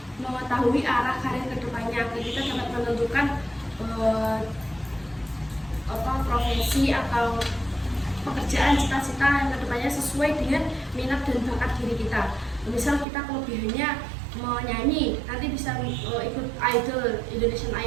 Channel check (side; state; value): left; drops out; at 13.1 s